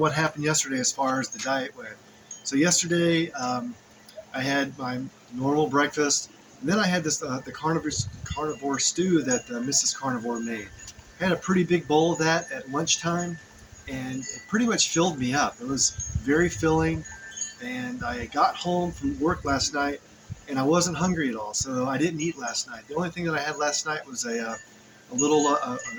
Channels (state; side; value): identical; both; correlation 1.00